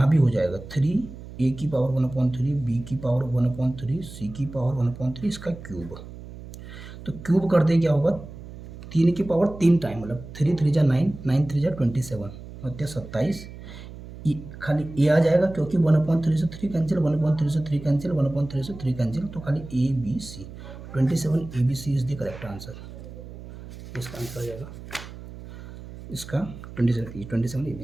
भी हो जाएगा 3 ए की पावर 1/3, बी की पावर 1/3, सी की पावर 1/3, इसका क्यूब। तो क्यूब कर दे क्या होगा, 3 की पावर 3 टाइम, मतलब 3 3 जा 9, 9 3 जा 27, मतलब 27। खाली ए आ जाएगा क्योंकि 1/3 से 3 कैंसिल, 1/3 से 3 कैंसिल, 1/3 से 3 कैंसिल, तो खाली A B C, 27 A B C is the correct answer. इसका आंसर आ जाएगा इसका 27 ए बी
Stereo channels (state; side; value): noise; right; hum, 14 dB below the sound